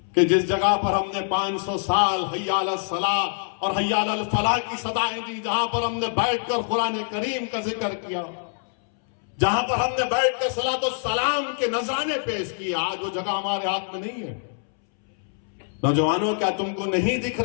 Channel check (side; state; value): right; silent; 62 dB below the other